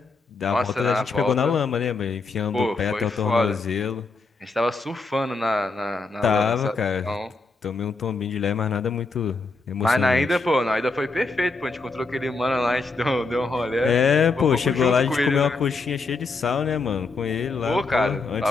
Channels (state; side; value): quieter; right; 3.8 dB